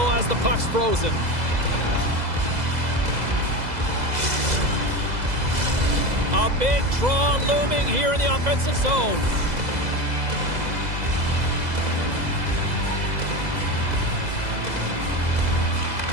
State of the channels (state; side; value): late; left; 2.0 ms